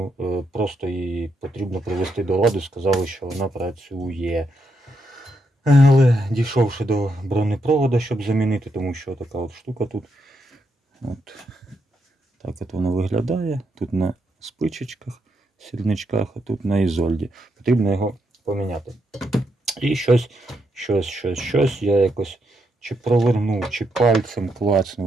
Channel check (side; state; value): both; normal; correlation 0.80